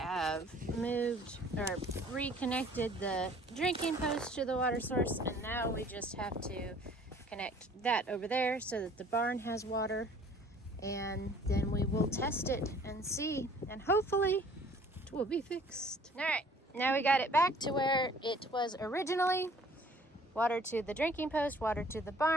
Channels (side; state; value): both; normal; correlation 0.53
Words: moved or reconnected the drinking post to the water source, and now we just have to connect that over there so that the barn has water, and then we will test it and see, and hopefully it will be fixed. All right, now we got it back to where it was originally. Water to the drinking post, water to the